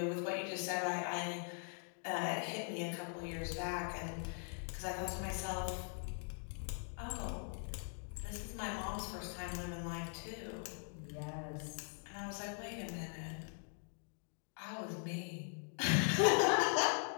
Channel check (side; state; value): right; silent; 50 dB below the other